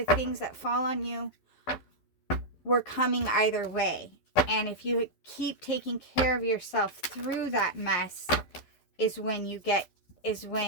things that fall on you were coming either way. And if you keep taking care of yourself through that mess is when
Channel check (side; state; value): right; late; 11 ms